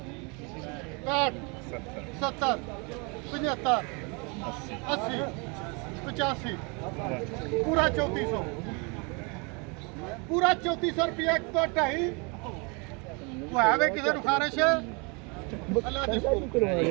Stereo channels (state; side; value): quieter; left; 31.4 dB